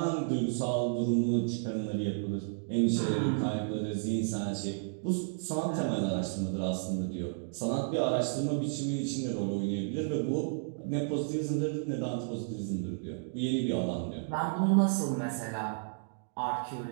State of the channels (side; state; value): left; silent; digital silence